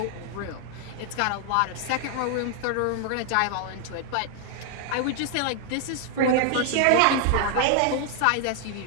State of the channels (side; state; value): both; different; correlation 0.00